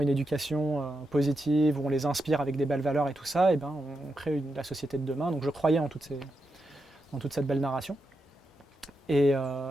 éducation positive, où on les inspire avec des belles valeurs et tout ça, on crée la société de demain. Donc je croyais en toute cette belle narration. Et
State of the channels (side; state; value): both; normal; correlation 0.86